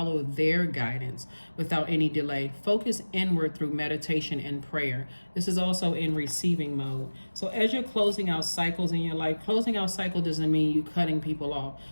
their guidance without any delay. Focus inward through meditation and prayer. This is also in receiving mode. So as you're closing out cycles in your life, closing out cycle doesn't mean you cutting people off.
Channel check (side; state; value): both; inverted; correlation -1.00